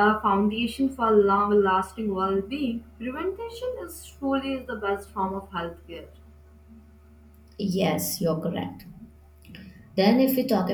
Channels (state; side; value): identical; both; correlation 1.00